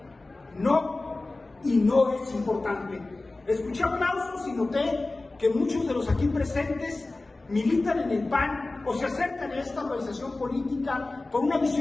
no, y no es importante. Escuché aplausos y noté que muchos de los aquí presentes militan en el PAN o se acercan a esta organización política por una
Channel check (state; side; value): quieter; right; 3.1 dB